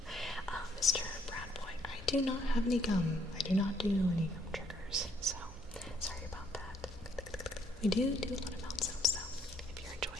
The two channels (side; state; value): both; normal; correlation 0.68